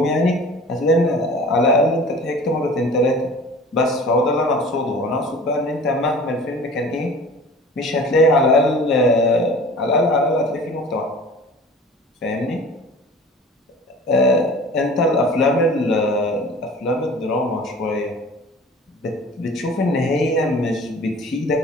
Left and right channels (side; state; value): both; normal; correlation 0.43